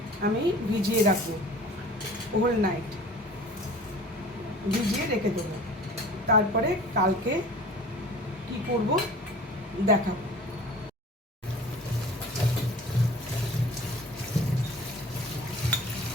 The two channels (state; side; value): normal; both; correlation 0.44